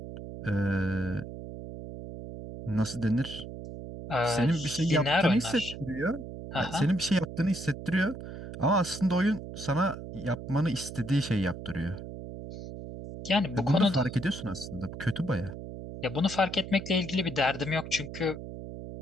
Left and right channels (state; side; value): noise; right; hum, 10 dB below the sound